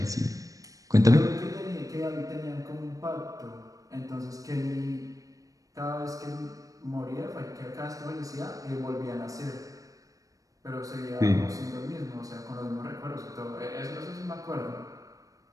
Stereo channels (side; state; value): left; late; 0.16 ms